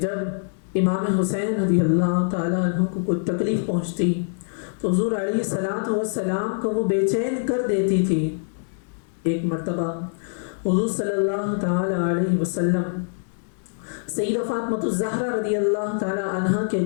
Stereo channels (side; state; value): right; silent; digital silence